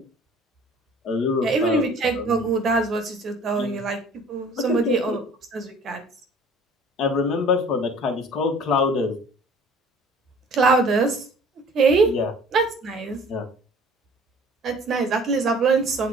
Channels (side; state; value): both; normal; correlation 0.49